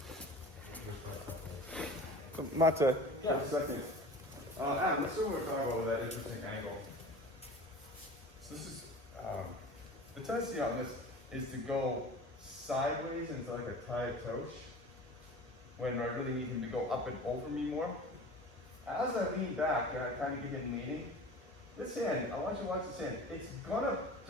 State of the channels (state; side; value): normal; both; correlation 0.39